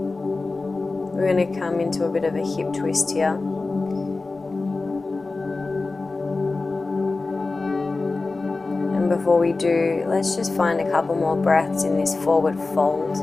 We're going to come into a bit of a hip twist here. Before we do, let's just find a couple more breaths in this forward fold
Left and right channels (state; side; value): quieter; right; 3.6 dB